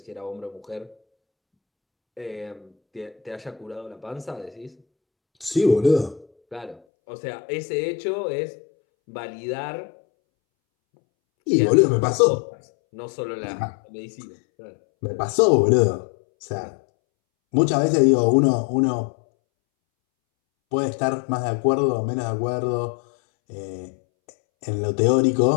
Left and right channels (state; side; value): drops out; right; at 6.8 s